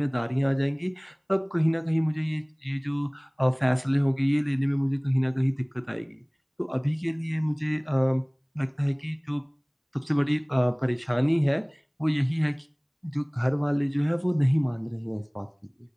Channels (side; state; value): both; identical; correlation 1.00